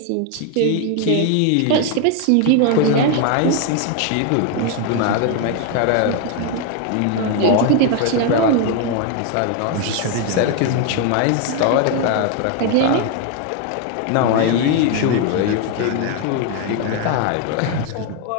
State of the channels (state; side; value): different; both; correlation 0.01